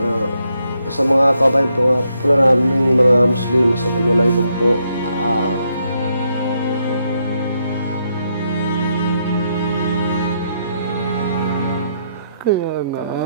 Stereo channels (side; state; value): both; inverted; correlation -0.78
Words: sa mga kabayan po naming mga Muslim sa Assalamualaikum po, kaya